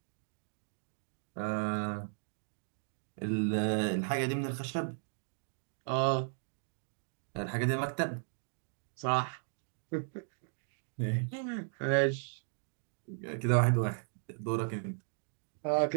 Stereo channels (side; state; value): left; silent; digital silence